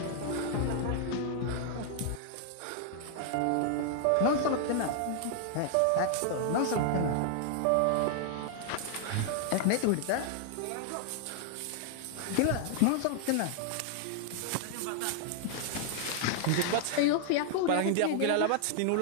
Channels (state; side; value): different; both; correlation 0.00